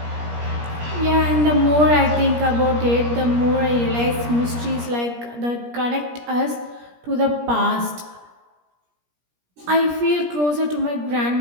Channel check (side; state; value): left; late; 17 ms